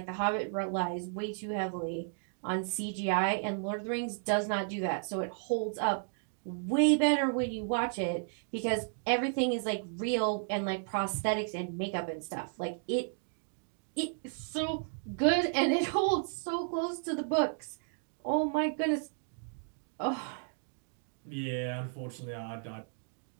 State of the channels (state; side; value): silent; left; digital silence